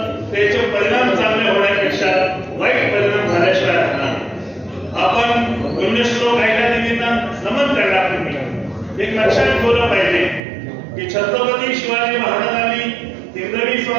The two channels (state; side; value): drops out; left; at 10.4 s